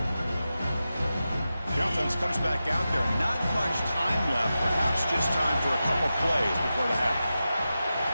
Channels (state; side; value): inverted; both; correlation -0.92